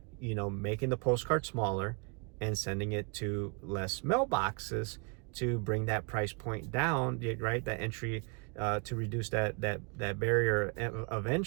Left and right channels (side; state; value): left; quieter; 34.3 dB